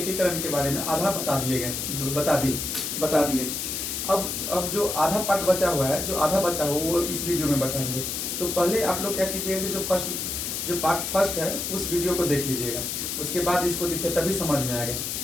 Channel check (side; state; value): left; noise; hiss, 3 dB below the sound